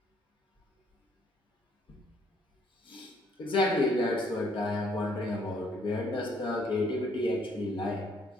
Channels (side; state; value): both; normal; correlation 0.66